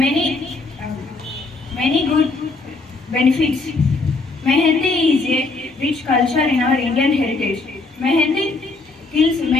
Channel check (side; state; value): right; quieter; 3.5 dB